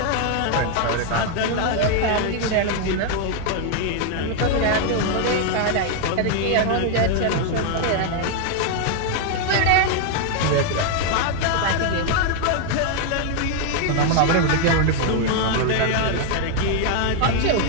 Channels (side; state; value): both; different; correlation 0.00